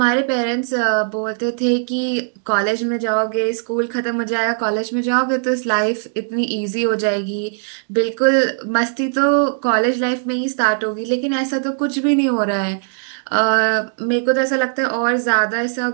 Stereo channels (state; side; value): silent; left; digital silence